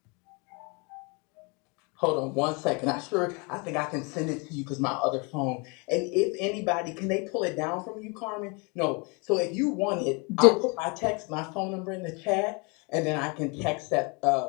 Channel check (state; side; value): quieter; right; 31.2 dB